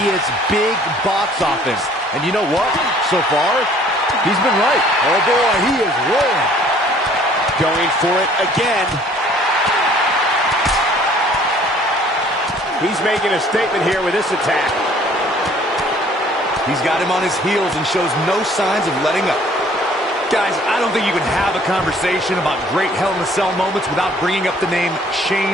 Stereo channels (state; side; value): normal; both; correlation 0.56